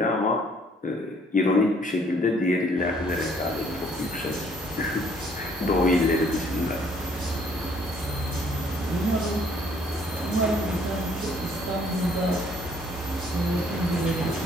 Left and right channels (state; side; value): normal; both; correlation 0.63